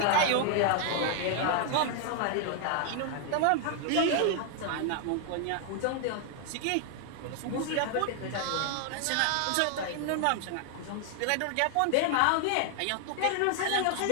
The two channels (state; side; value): different; both; correlation 0.00